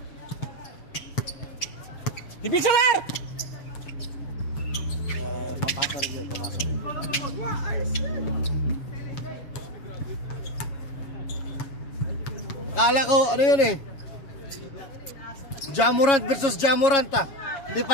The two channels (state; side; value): late; right; 7.2 ms